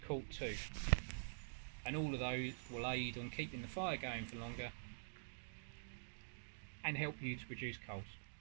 too. And all of those will aid on keeping the fire going for longer and help you to produce coals.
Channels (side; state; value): left; silent; digital silence